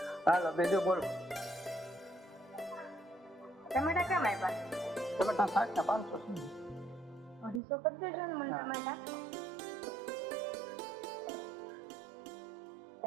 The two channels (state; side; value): drops out; left; at 7.6 s